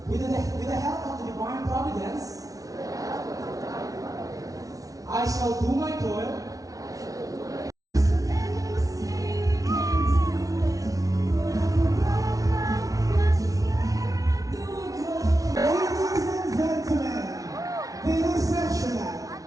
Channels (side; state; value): left; late; 0.17 ms